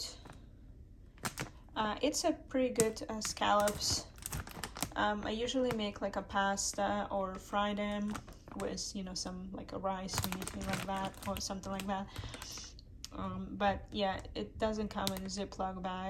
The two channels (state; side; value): identical; both; correlation 1.00